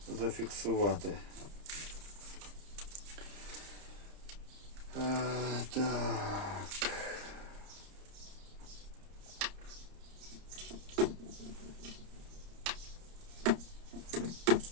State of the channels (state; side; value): late; left; 30 ms